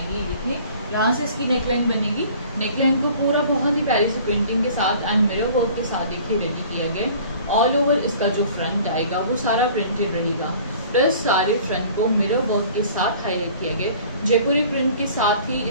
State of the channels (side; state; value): both; inverted; correlation -0.49